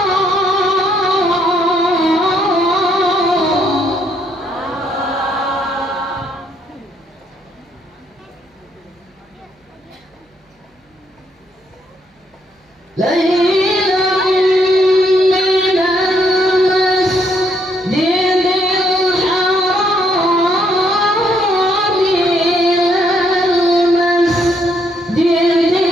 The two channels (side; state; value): both; normal; correlation 0.72